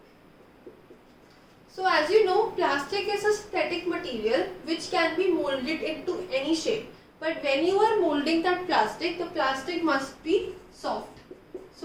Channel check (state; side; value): identical; both; correlation 1.00